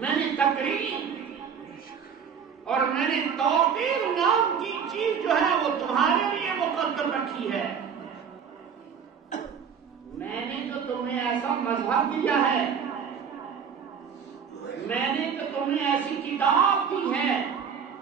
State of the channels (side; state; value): left; quieter; 7.1 dB